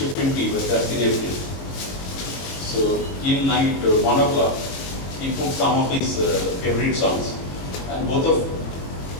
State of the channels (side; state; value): right; late; 21 ms